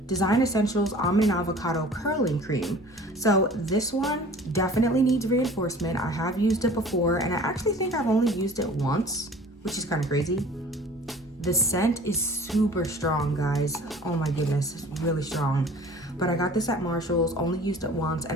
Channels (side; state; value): both; normal; correlation 0.46